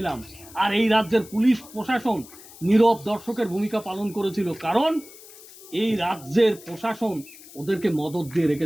আর এই রাজ্যের পুলিশ প্রশাসন নীরব দর্শকের ভূমিকা পালন করেছিল, কারণ এই রাজ্যের প্রশাসন ওদেরকে মদত দিয়ে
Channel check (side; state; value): left; noise; hiss, 19 dB below the sound